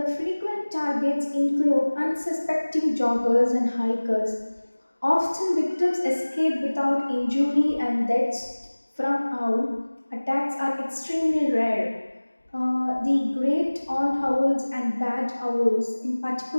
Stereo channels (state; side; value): inverted; both; correlation -1.00